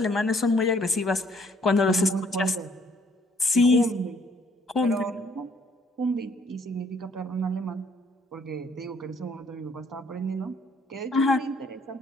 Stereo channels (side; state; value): both; normal; correlation 0.64